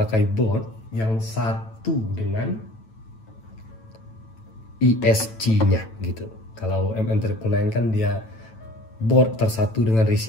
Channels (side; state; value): right; late; 9.1 ms